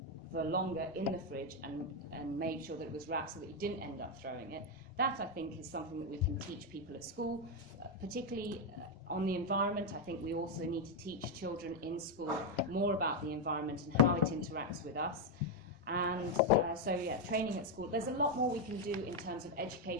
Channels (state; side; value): normal; both; correlation 0.04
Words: for longer in the fridge and made sure that it was wrapped so that you didn't end up throwing it. That, I think, is something that we can teach people at school, particularly on the environment. I think we also need to teach children in school more about the environment and how it interacts with us. And training at school. There's a lot more we can do in terms of